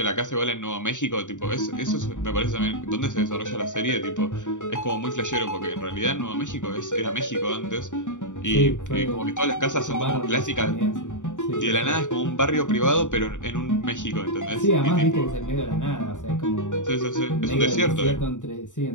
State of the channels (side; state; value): right; late; 0.86 ms